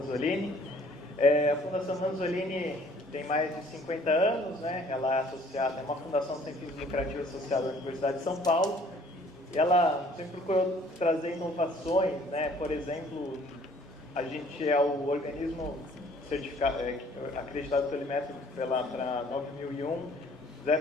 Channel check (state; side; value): normal; both; correlation 0.57